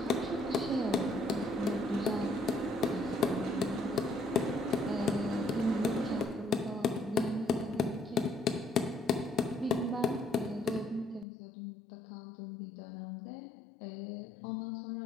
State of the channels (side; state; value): right; drops out; at 11.2 s